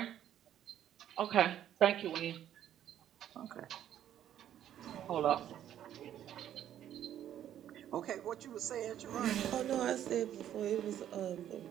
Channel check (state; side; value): quieter; left; 10.9 dB